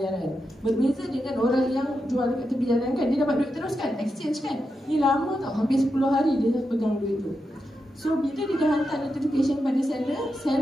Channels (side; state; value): both; normal; correlation 0.87